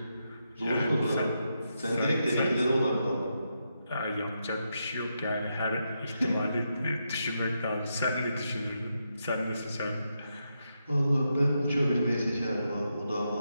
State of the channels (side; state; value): both; inverted; correlation -0.83